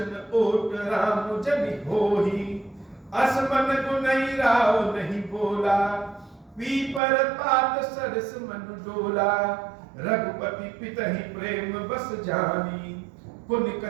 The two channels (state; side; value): drops out; left; at 7.0 s